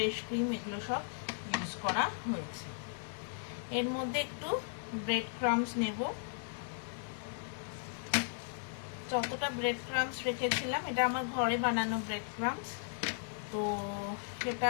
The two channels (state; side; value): silent; right; digital silence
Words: ক্রিম, এগুলো সব ইউজ করা হয়েছে। এর মধ্যে একটু ব্রেড ক্রাম্বস নেব, যতটা ব্রেড ক্রাম্বস রেখেছিলাম, এটা আমার ঘরে বানানো ব্রেড ক্রাম্বস, তো